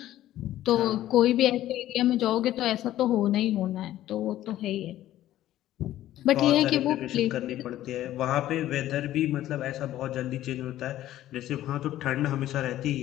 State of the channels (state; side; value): quieter; right; 13.6 dB